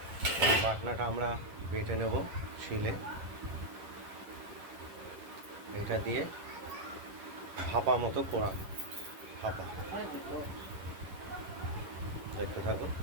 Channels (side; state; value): left; late; 11 ms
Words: বাটনাটা আমরা বেটে নেব শিলে, এটা দিয়ে ভাপা মতো করা ভাপা দেখতে থাকুন।